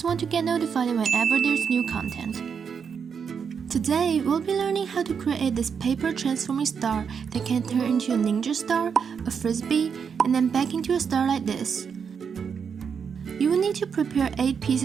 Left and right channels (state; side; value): quieter; left; 6.6 dB